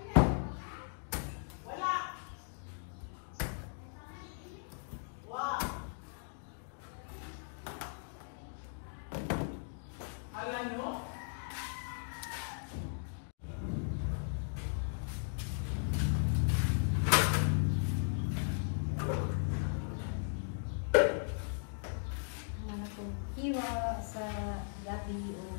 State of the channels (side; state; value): right; silent; digital silence